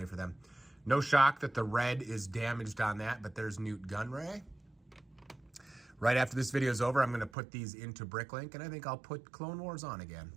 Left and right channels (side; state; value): left; drops out; at 7.3 s